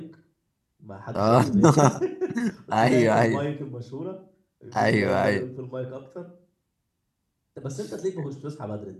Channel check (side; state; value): both; identical; correlation 1.00